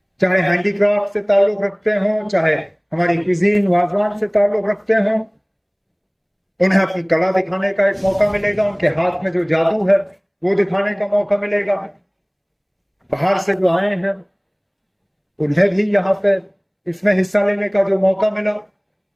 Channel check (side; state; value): both; identical; correlation 1.00